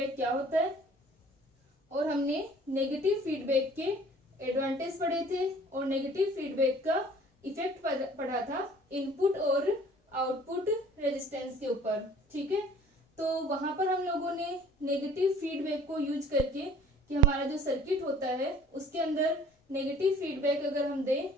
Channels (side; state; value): both; normal; correlation 0.51